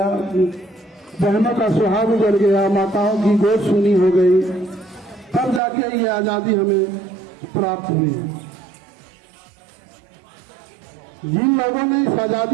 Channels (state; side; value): drops out; left; at 5.6 s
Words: बहनों का सुहाग उजड़ गया, माताओं की गोद सूनी हो गई, तब जाके ये आजादी हमें प्राप्त हुई। जिन लोगों ने इस